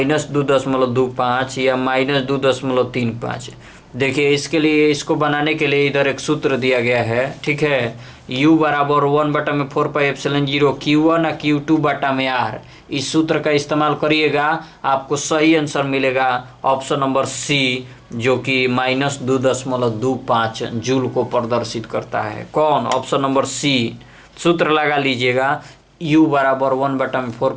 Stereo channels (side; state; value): both; identical; correlation 1.00